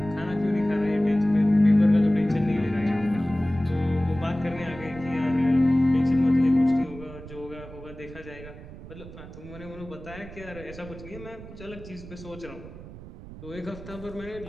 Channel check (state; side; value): noise; right; rumble, 15 dB below the sound